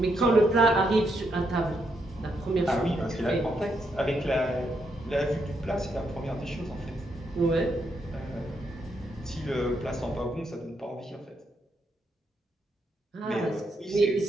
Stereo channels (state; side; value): normal; both; correlation 0.79